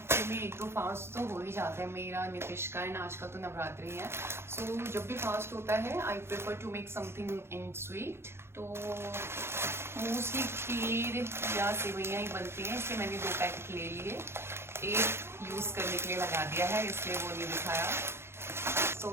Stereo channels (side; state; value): left; late; 0.12 ms